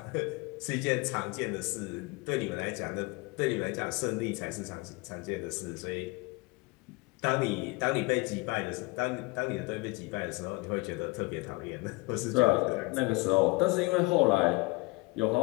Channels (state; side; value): quieter; right; 24.8 dB